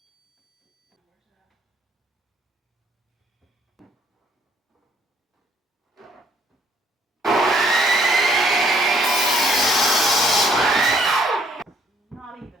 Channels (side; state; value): both; normal; correlation 0.64